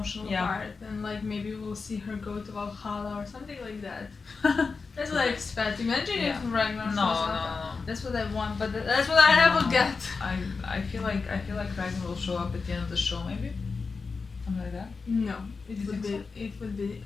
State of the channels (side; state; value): right; quieter; 4.6 dB